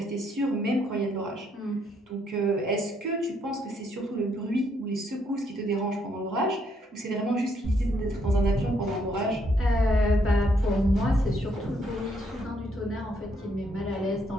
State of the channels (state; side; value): normal; both; correlation 0.72